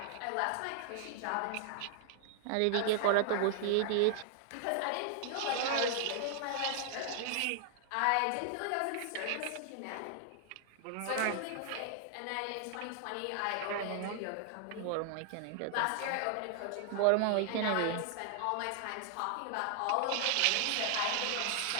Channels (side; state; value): both; different; correlation 0.00